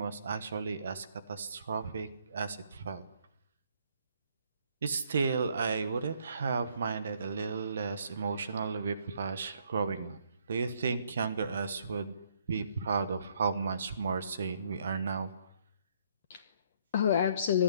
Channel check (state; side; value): inverted; both; correlation -0.67